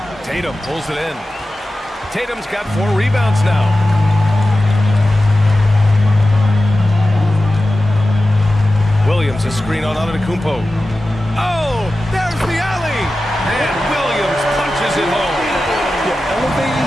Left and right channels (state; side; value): normal; both; correlation 0.94